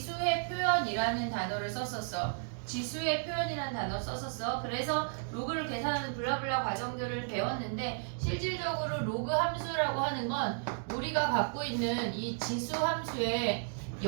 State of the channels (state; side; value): silent; left; digital silence